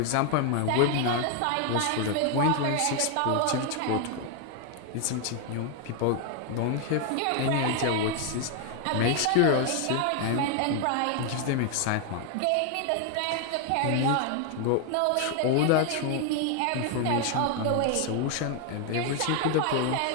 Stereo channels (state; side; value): different; both; correlation 0.00